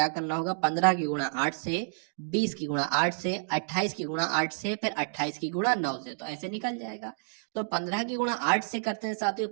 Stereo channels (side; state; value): left; silent; digital silence